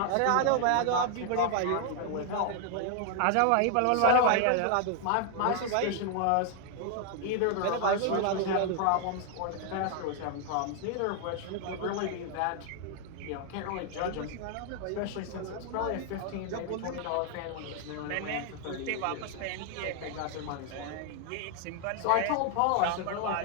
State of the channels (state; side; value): different; both; correlation 0.00